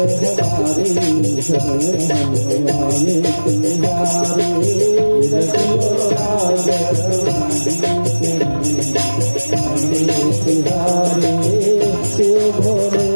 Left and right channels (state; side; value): inverted; both; correlation -1.00